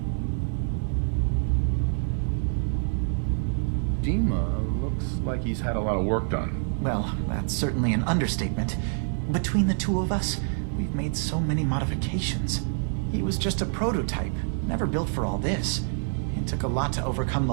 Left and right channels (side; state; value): left; silent; digital silence